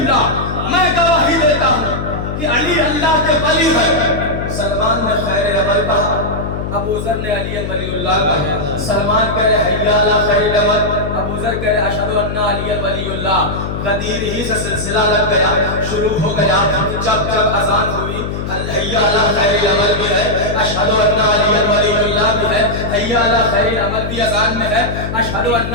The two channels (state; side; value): noise; left; hum, 5 dB below the sound